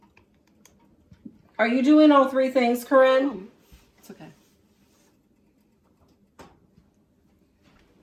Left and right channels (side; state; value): both; identical; correlation 1.00